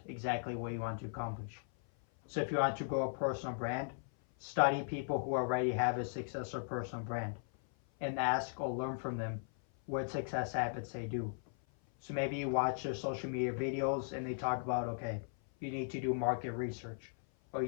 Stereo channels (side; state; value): right; silent; 53 dB below the other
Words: exactly what you want to accomplish. So if you want to grow a personal brand, study people who already have a successful personal brand and ask or learn from them what success habits they do. So maybe you watch their social media videos and they talk about, okay, you need to do market research or